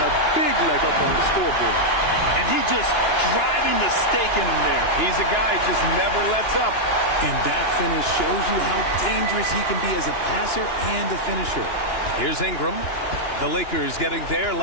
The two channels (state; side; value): late; right; 2.9 ms